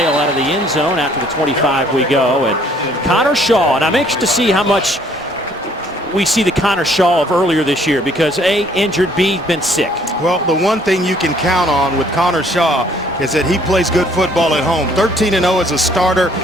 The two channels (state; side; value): normal; both; correlation 0.61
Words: out of the end zone after the 25 we go. And Connor Shaw, and I'm anxious to see how much we see the Connor Shaw of earlier this year because A, injured, B, been sick. Well, the one thing you can count on with Connor Shaw is that he plays good football at home. 13-0 as a starter